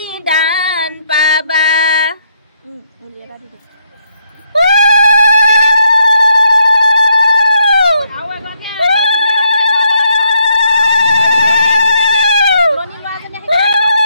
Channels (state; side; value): inverted; both; correlation -0.75